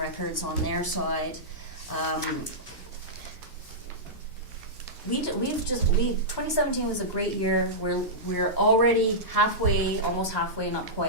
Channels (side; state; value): both; normal; correlation -0.13